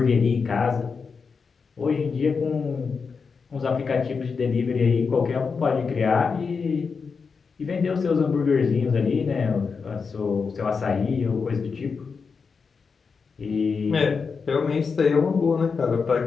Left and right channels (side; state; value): right; quieter; 5.3 dB